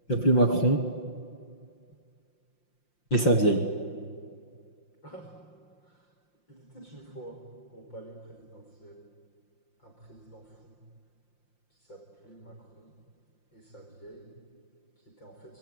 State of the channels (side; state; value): right; late; 5.7 ms